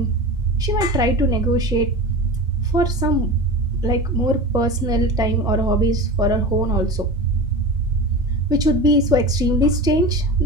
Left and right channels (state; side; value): normal; both; correlation 0.30